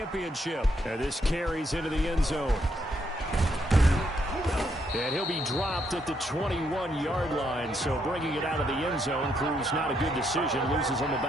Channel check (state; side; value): normal; both; correlation 0.75